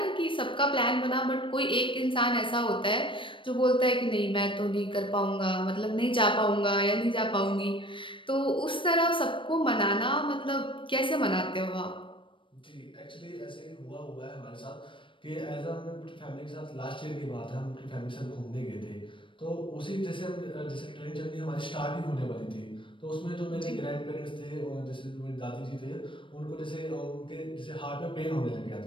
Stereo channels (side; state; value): right; late; 0.25 ms